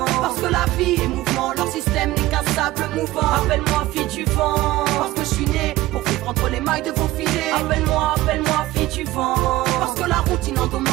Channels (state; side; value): quieter; left; 17.1 dB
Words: parce que la vie est mouvement, leur système n'est qu'un sable mouvant. Appelle-moi fille du vent, parce que je suis né pour vivre entre les mailles de vos filets. Appelle-moi, appelle-moi fille du vent, parce que la routine